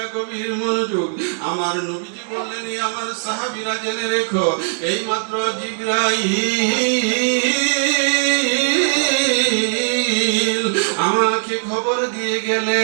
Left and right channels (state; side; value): silent; left; digital silence